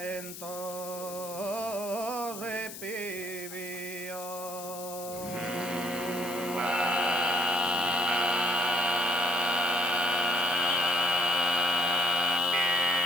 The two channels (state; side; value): noise; left; hiss, 11 dB below the sound